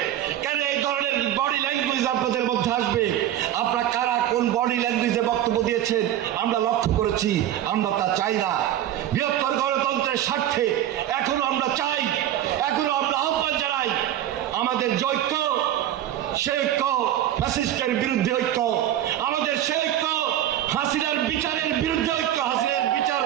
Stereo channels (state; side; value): quieter; left; 12.1 dB